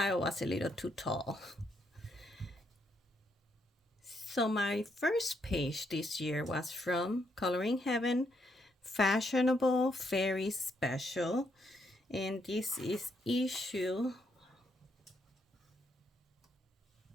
was a little too tall. So my first page this year was from Coloring Heaven, Fashionable Fairy Special. And this is issue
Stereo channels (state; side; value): normal; both; correlation 0.76